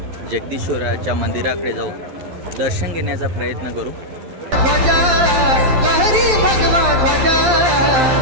जगदीश्वराच्या मंदिराकडे जाऊन दर्शन घेण्याचा प्रयत्न करू. ध्वजा लहरी भगवा ध्वजा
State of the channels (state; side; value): late; left; 12 ms